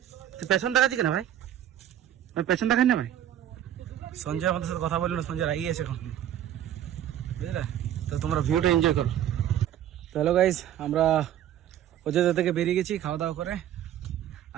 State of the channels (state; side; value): quieter; left; 11.1 dB